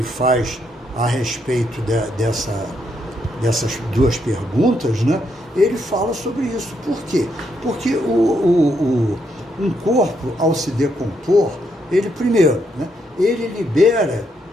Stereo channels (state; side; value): normal; both; correlation 0.77